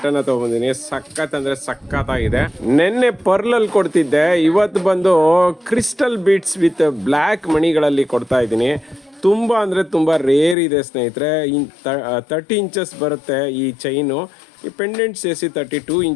ಅನ್ನ ತಗೊಂಡಿದ್ದೀನಿ. ಸಖತ್ ಅಂದ್ರೆ ಸಖತ್ತಾಗಿದೆ. ನೆನ್ನೆ ಪರ್ಲ್ ಅಲ್ಲಿ ಕೊಡ್ತಿದ್ದೆ, ಇವತ್ತು ಬಂದು ಕ್ರಿಸ್ಟಲ್ ಬೀಡ್ಸ್ ವಿತ್ ಬ್ಲ್ಯಾಕ್ ಮಣಿಗಳಲ್ಲಿ ಕೊಡ್ತಾ ಇದ್ದೀನಿ. ತುಂಬಾ ಅಂದ್ರೆ ತುಂಬಾ ರೇರ್ ಇದೆ ಸ್ನೇಹಿತರೆ. 30 ಇಂಚಸ್ ಬರುತ್ತೆ ಈ ಚೈನು. ಈ ಪೆಂಡೆಂಟ್ ಸೇರಿಸಿ 32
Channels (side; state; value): right; drops out; at 10.6 s